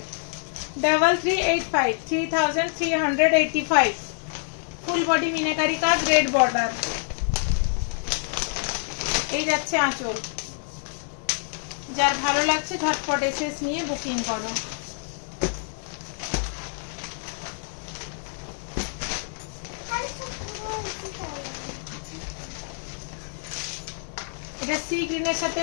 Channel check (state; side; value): silent; right; 61 dB below the other